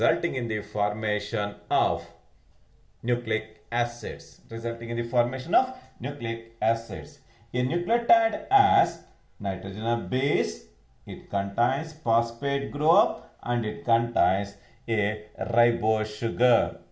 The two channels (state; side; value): identical; both; correlation 1.00